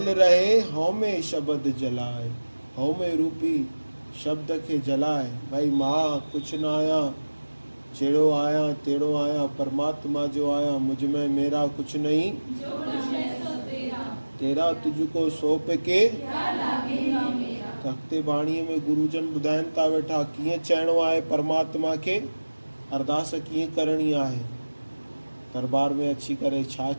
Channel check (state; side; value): inverted; both; correlation -1.00